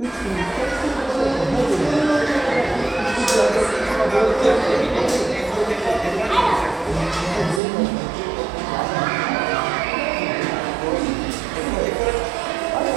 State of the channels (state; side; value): drops out; left; at 7.6 s